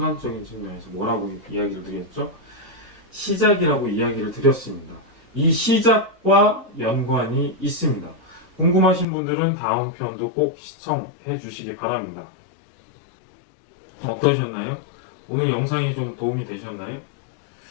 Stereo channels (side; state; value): right; drops out; at 9.1 s